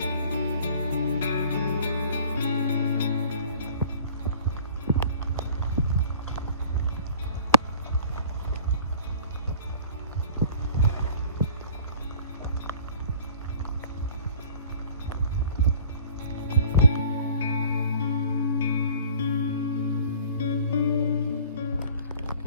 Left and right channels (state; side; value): inverted; both; correlation -0.47